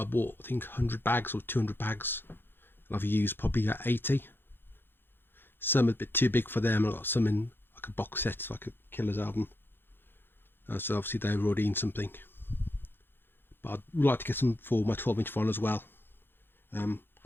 I bought, I think, 100 bags or 200 bags, and I've used probably 80. Some are a bit too big for them. I got some in like a box set, like a Killers album. So obviously they were already in something. But I'd like to get some for my 12-inch vinyl as well.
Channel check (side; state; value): right; late; 0.10 ms